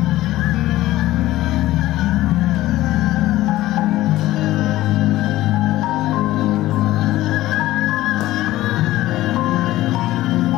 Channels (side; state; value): right; quieter; 16.0 dB